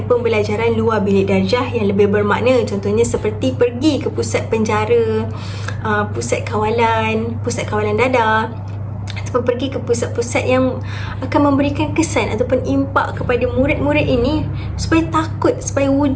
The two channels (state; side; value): identical; both; correlation 1.00